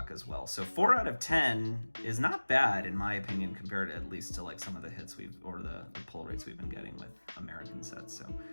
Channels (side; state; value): both; inverted; correlation -1.00